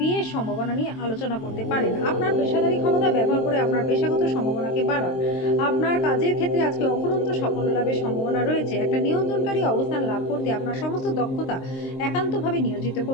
সম্ভাবনা নিয়ে আলোচনা করতে পারেন। আপনার পেশাদারী ক্ষমতা ব্যবহার করে আপনার পেশাগত সম্ভাবনাকে বাড়ান। আপনার কাজের ক্ষেত্রে আজকে অফুরন্ত সাফল্য লাভের সম্ভাবনা রয়েছে। একটা নিয়ন্ত্রণকারী অবস্থান লাভ করতে আপনার সমস্ত দক্ষতা একান্তভাবে নিয়োজিত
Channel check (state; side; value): late; right; 23 ms